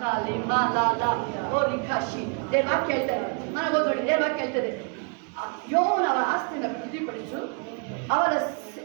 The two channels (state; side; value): quieter; left; 37.1 dB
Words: ವಾಕ್ಯ ಹೇಳ್ತಾರೆ, ಮನೆ ಓದೋಡಿ ವಾಕ್ಯ ಹೇಳ್ತಾರೆ, ಯೋವನವರ ಆಸ್ತಿಯನ್ನು ವೃದ್ಧಿಪಡಿಸು, ಅವರ